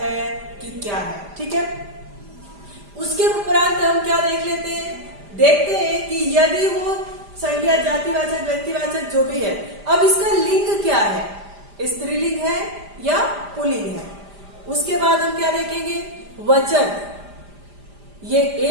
है कि क्या है। ठीक है, उसके उपरांत हम क्या देख लेते हैं, देखते हैं कि यदि वो संज्ञा, जातिवाचक, व्यक्तिवाचक जो भी है, अब इसका लिंग क्या है, स्त्रीलिंग है या पुल्लिंग है। उसके बाद हम क्या देखेंगे, वचन, ये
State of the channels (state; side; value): late; left; 5.0 ms